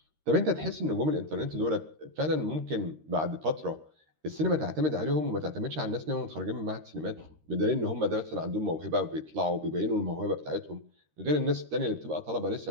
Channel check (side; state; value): left; late; 13 ms